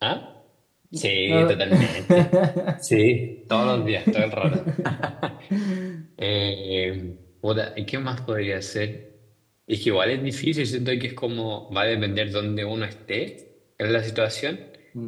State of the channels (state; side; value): identical; both; correlation 1.00